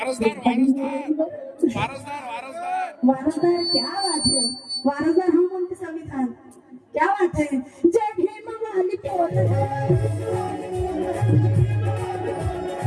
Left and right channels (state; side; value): identical; both; correlation 1.00